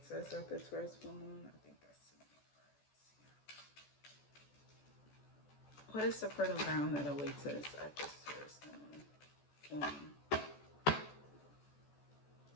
us at the Taurus full moon? I think that's too many words. Yeah. What is the fertile ground that awaits us at this Taurus full moon?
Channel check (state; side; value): late; right; 14 ms